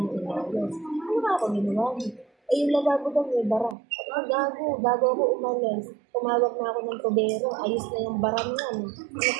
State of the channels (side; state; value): left; drops out; at 3.8 s